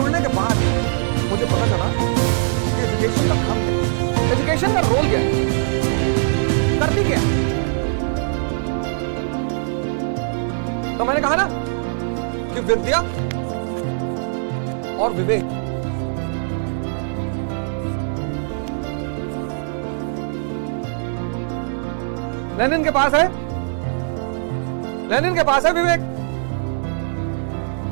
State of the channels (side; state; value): left; silent; digital silence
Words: के बाद मुझे पता चला कि एजुकेशन का काम क्या है, एजुकेशन का रोल क्या है, करती क्या है। तो मैंने कहा ना कि विद्या और विवेक, लेनिन के पास है, लेनिन के पास है विवेक।